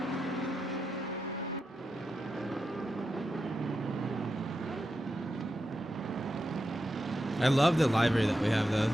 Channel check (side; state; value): both; normal; correlation 0.88